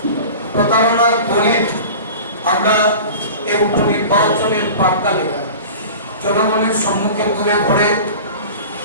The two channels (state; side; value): inverted; both; correlation -0.37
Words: প্রতারণার বলে আমরা এই উপনির্বাচনের প্রাক্কালে জনগণের সম্মুখে তুলে ধরে